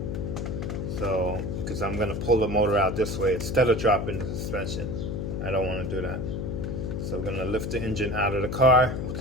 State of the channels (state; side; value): noise; left; hum, 3 dB below the sound